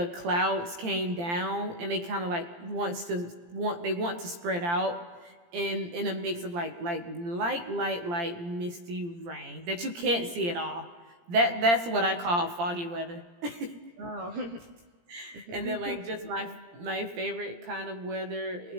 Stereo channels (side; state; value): left; late; 17 ms